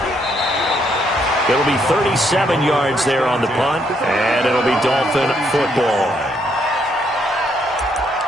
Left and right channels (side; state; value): both; normal; correlation 0.73